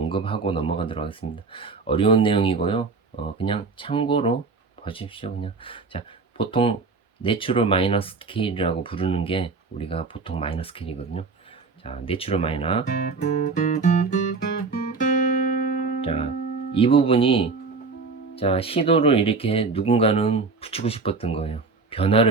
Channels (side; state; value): left; quieter; 4.3 dB